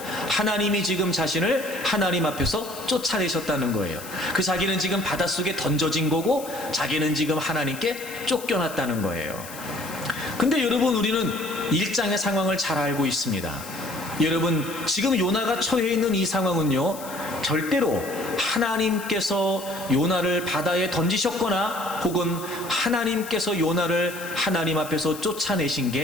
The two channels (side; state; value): left; noise; hiss, 14 dB below the sound